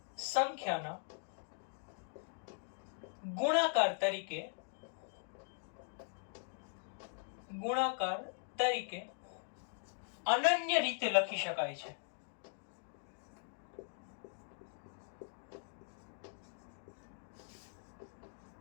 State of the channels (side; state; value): right; silent; digital silence